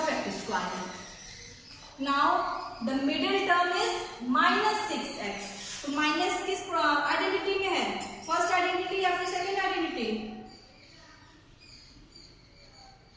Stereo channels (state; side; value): identical; both; correlation 1.00